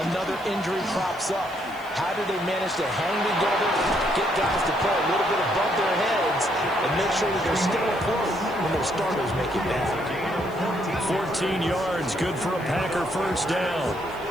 another injury crops up. How do they manage to hang together, get guys to play a little bit above their heads, and make sure that they're still afloat when their starters make it bad? 14 yards, good for a Packer first down.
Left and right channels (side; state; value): right; noise; hiss, 24 dB below the sound